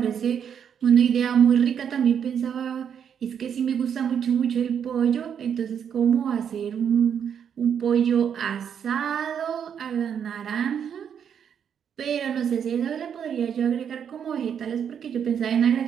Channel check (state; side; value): quieter; left; 8.1 dB